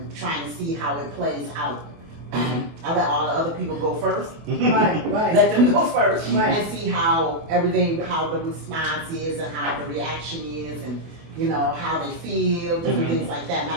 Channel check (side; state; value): left; late; 25 ms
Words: trying to see how it plays out. I let all the other people go first. Right, right. Let them go first Right. and see how everything, how the response is and how the reaction is and, you know, how they feel, different things like that.